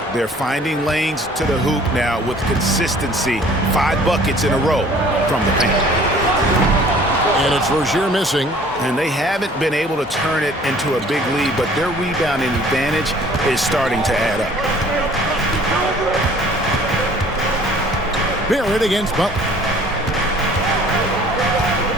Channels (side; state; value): both; normal; correlation 0.53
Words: They're finding lanes to the hoop now with consistency. 5 buckets in a row from the paint. And it's Rozier missing. And they haven't been able to turn it into a big lead, but their rebounding advantage is starting to add up. Barrett against Butler.